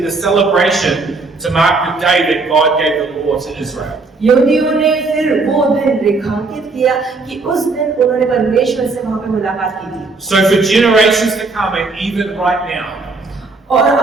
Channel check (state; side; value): quieter; left; 3.8 dB